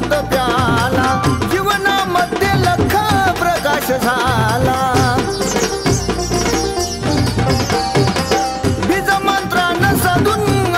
झाला बीज मंत्रानं साधून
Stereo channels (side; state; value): both; identical; correlation 1.00